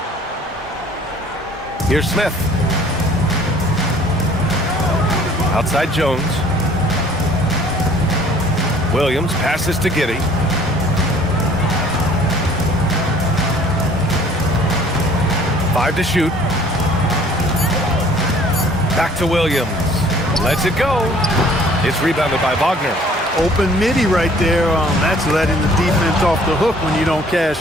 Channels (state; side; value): normal; both; correlation 0.54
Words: Here's Smith. Outside Jones. Williams passes to Giddey. Five to shoot. Back to Williams. Lets it go. It's rebounded by Wagner. Open midi right there. That's letting the defense off the hook when you don't